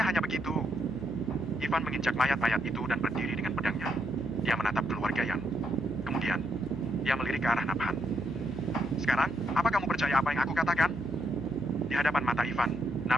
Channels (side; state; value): left; noise; hum, 12 dB below the sound